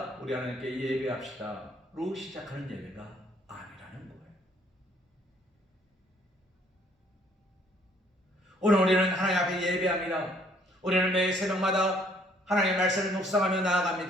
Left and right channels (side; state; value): both; normal; correlation 0.63